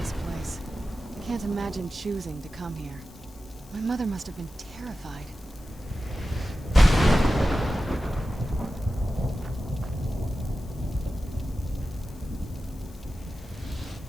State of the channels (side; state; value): left; noise; hiss, 25 dB below the sound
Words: place. I can't imagine choosing to come here. My mother must have been terrified.